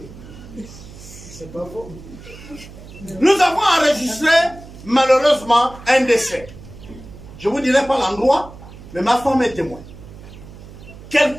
C'est pas faux. Nous avons enregistré, malheureusement, un décès. Je ne vous dirai pas l'endroit, mais ma femme est témoin.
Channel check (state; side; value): noise; right; hum, 17 dB below the sound